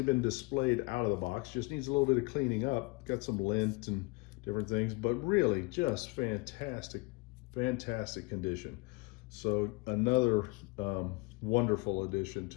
been displayed out of the box, just needs a little bit of cleaning up, got some lint and different things, but really just fantastic condition. So another wonderful addition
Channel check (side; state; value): right; quieter; 26.3 dB